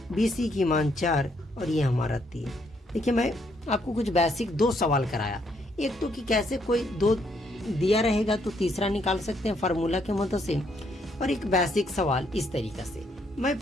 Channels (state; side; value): normal; both; correlation 0.72